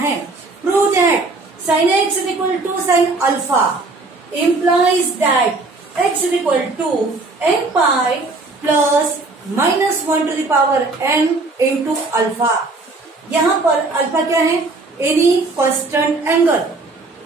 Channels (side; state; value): left; quieter; 3.4 dB